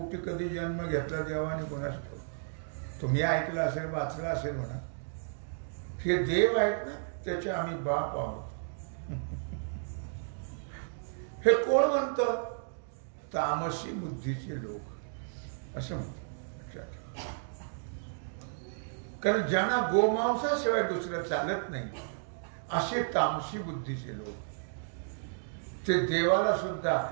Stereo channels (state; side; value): silent; left; digital silence